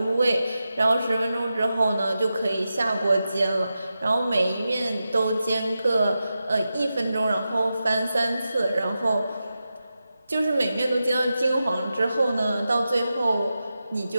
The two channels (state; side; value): inverted; both; correlation -0.91